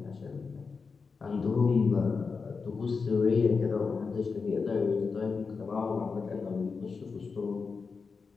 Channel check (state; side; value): quieter; right; 4.9 dB